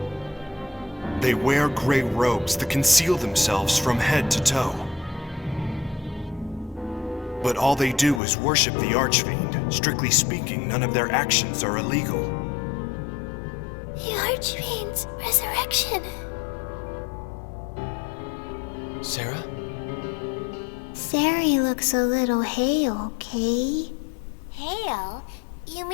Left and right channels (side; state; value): right; drops out; at 8.2 s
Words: They wear gray robes that conceal themselves from head to toe. But all they do is worship the Archfiend. Strictly speaking, none of their actions are illegal. The Archfiend's resurrection. Sarah? Sari looks a little hale, Kay. Hale? You